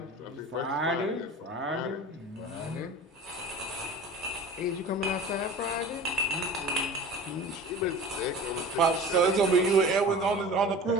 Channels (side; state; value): both; normal; correlation 0.38